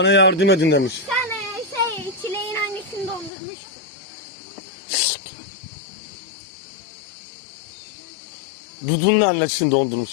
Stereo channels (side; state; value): right; drops out; at 3.3 s